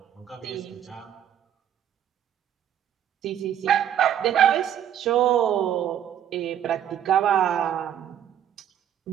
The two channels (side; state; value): left; quieter; 10.1 dB